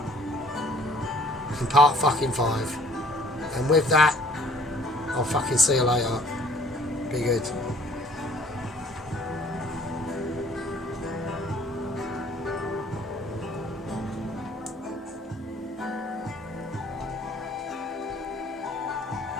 in part fucking 5. And with that, I'll fucking see you later. Be good.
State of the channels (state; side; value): normal; both; correlation 0.56